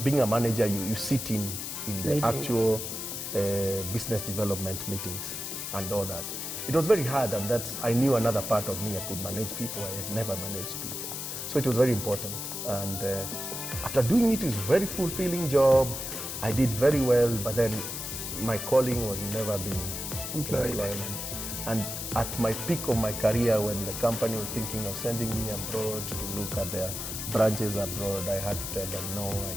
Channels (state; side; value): noise; left; hiss, 5 dB below the sound